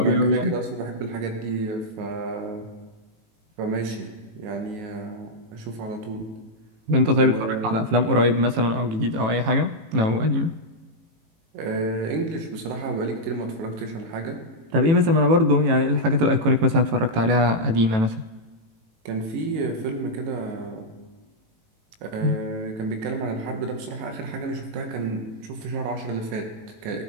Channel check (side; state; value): left; late; 18 ms